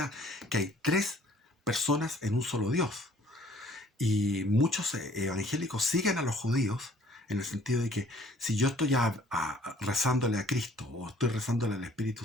que hay tres personas en un solo Dios. Y muchos evangélicos siguen a los judíos en el sentido de que si yo estoy rezándole a Cristo o estoy rezándole al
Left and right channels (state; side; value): normal; both; correlation 0.56